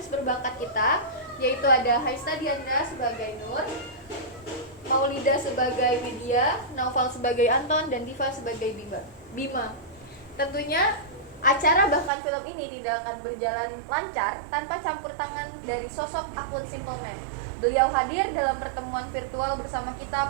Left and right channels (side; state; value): left; drops out; at 12.1 s